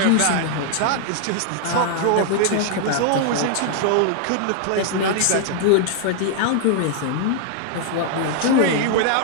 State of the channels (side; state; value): both; different; correlation 0.00